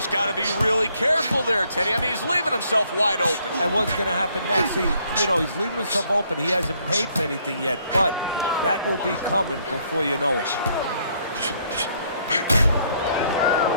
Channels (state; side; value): inverted; both; correlation -0.68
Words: got to be really careful there, Teddy. I mean, he's leaving himself wide open. And what's going to happen next? See, you know, he's leaving himself open. He hasn't paid for anything yet, but that will be coming before you know it.